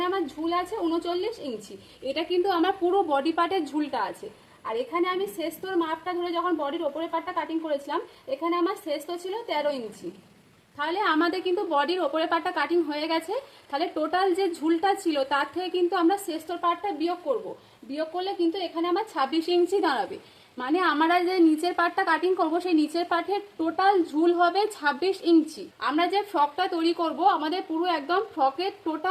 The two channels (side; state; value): both; identical; correlation 1.00